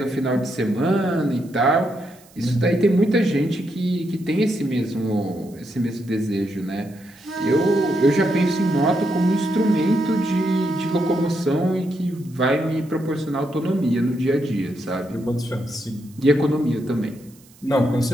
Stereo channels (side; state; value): right; noise; hiss, 27 dB below the sound